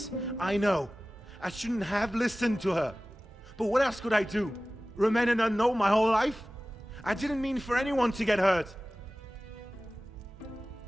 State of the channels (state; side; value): normal; both; correlation 0.97